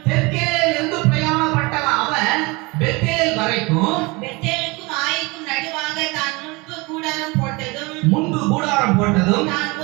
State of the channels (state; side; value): quieter; left; 25.6 dB